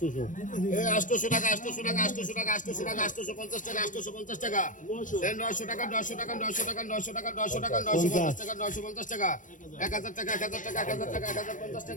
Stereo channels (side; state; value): right; late; 0.37 ms